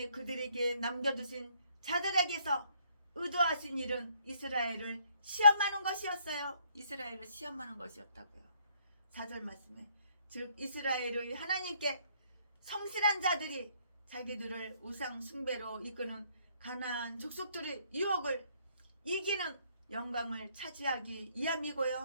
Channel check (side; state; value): both; inverted; correlation -0.67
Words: 그들에게 남겨두신 자들에게서 의도하신 일은 이스라엘을 시험하는 것이었어요. 이스라엘을 시험하는 것이었다고요. 4절 말씀에 즉 이스라엘의 하나님께 성실한 자들이 자기들을 우상 숭배로 이끄는 가나안 족속들의 유혹을 이기는 영광을 차지하기